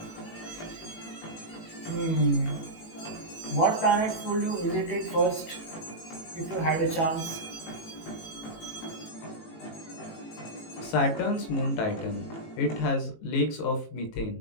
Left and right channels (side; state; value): right; late; 18 ms